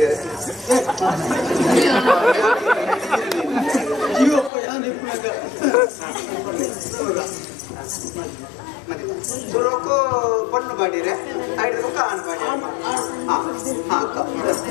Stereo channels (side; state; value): right; drops out; at 4.5 s